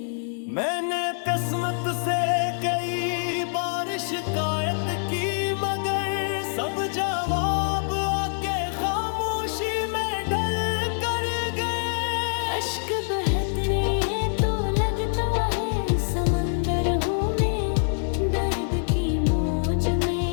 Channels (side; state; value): right; silent; digital silence